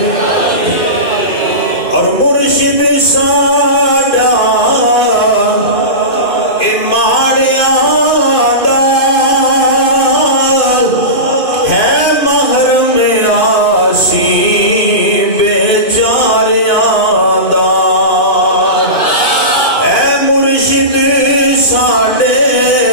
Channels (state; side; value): late; right; 2.5 ms